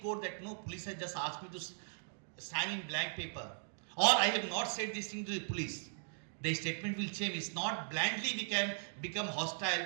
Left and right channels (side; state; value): left; silent; digital silence